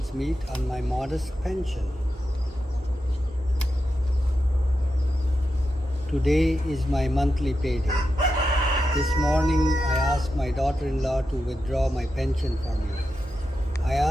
meet on my modest pension. Today is my monthly payday. This morning I asked my daughter-in-law to withdraw my pension for me. I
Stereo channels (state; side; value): normal; both; correlation 0.89